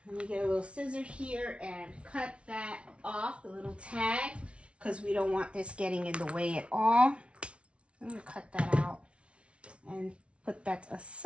me get a little scissor here and cut that off, the little tag, because we don't want this getting in the way at all. I'm going to cut that out and put that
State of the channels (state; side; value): late; left; 0.060 ms